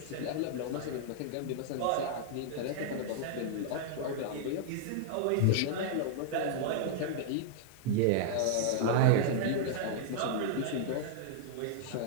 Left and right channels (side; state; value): both; different; correlation -0.01